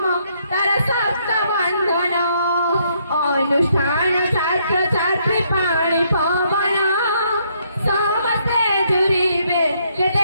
তার সপ্ত বন্ধন অনুষ্ঠান ছাত্র ছাত্রী পানি পবন সমস্তে জুড়িবে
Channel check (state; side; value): inverted; both; correlation -0.71